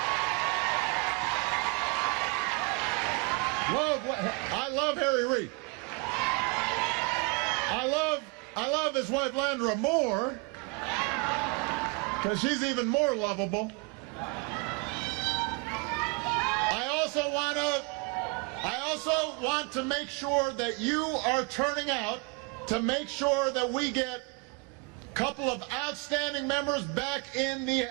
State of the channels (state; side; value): quieter; left; 29.5 dB